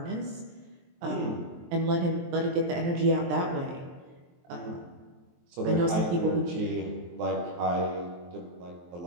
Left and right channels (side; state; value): left; late; 23 ms